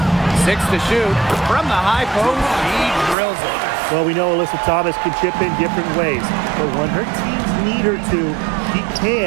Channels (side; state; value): left; drops out; at 3.2 s